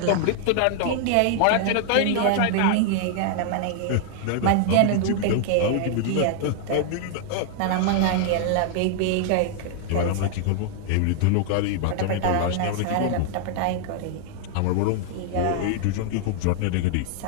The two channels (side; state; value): both; different; correlation 0.00